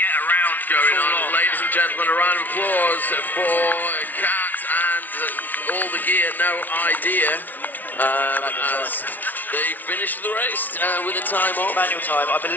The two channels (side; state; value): right; late; 0.082 ms